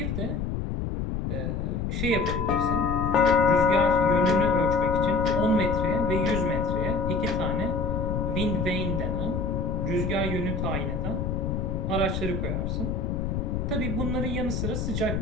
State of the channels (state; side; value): noise; left; rumble, 2 dB below the sound